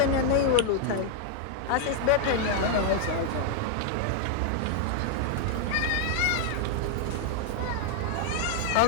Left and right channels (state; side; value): different; both; correlation 0.00